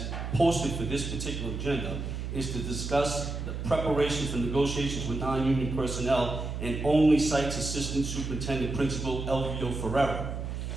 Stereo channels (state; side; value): noise; right; hum, 5 dB below the sound